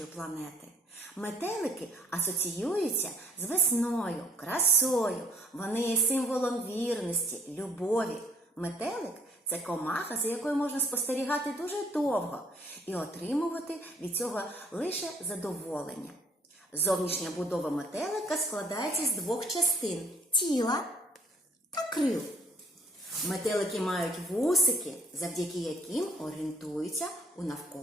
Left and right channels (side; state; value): both; normal; correlation 0.60